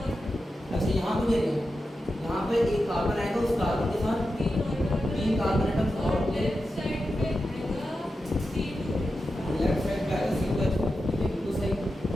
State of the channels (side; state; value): both; normal; correlation 0.90